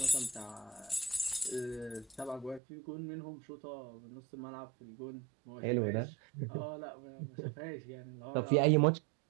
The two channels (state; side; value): drops out; left; at 2.6 s